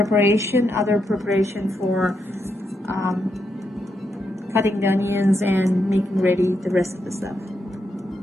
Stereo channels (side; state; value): both; normal; correlation 0.82